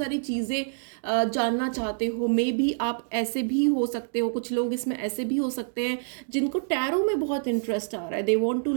चीज़ें जानना चाहते हो. मे बी आप ऐसे भी हो सकते हो, कुछ लोग इसमें ऐसे भी हो सकते हैं जिनको टैरो में बहुत इंटरेस्ट आ रहा है, they want to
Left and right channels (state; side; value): silent; left; digital silence